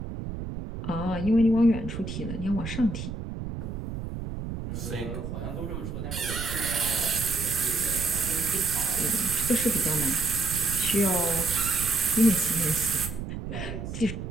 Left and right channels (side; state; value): right; noise; rumble, 7 dB below the sound